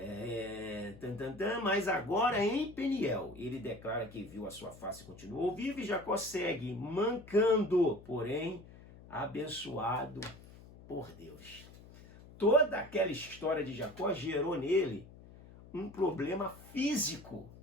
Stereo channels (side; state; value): left; noise; hum, 19 dB below the sound